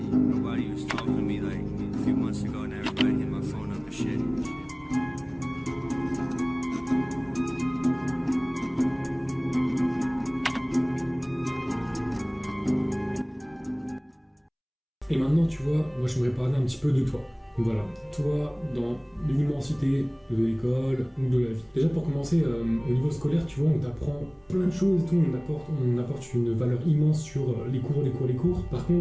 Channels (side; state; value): both; identical; correlation 1.00